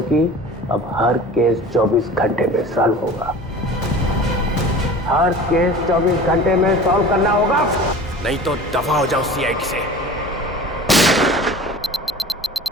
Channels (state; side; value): normal; both; correlation 0.39